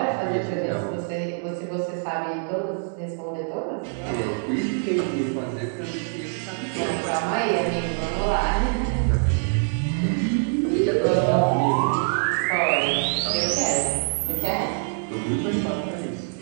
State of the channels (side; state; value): left; silent; 62 dB below the other